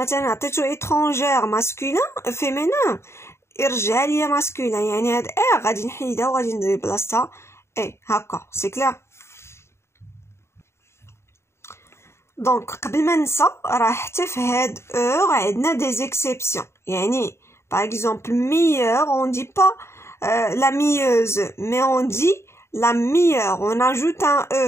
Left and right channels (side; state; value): right; late; 0.13 ms